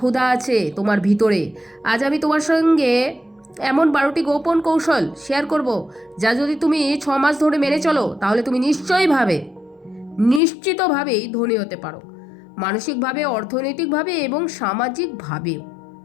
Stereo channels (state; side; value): drops out; right; at 10.4 s